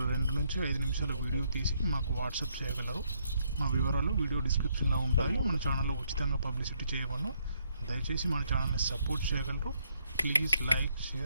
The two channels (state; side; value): inverted; both; correlation -0.72